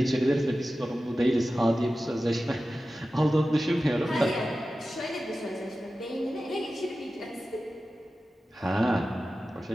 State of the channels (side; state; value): both; normal; correlation 0.94